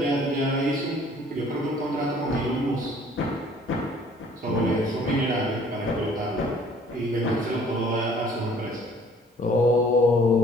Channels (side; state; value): both; normal; correlation 0.55